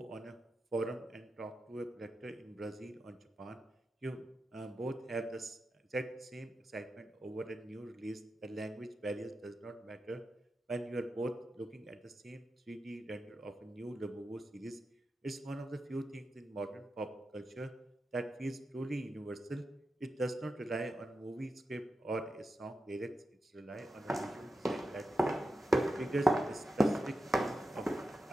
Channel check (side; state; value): both; normal; correlation 0.90